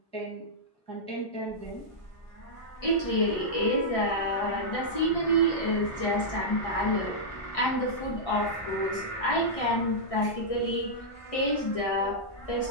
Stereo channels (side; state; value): right; late; 1.6 ms